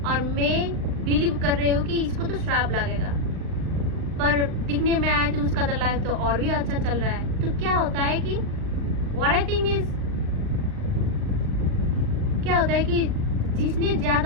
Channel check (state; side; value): late; left; 38 ms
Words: और मैं बिलीव कर रही हूँ कि इसको तो श्राप लगेगा, पर दिखने में आया तो उसका तो लाइफ तो और भी अच्छा चल रहा है. तो क्या होता है कि व्हाट आई थिंक इज, क्या होता है कि जिसने